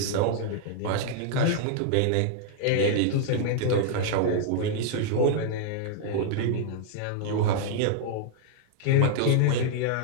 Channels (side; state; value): both; different; correlation -0.01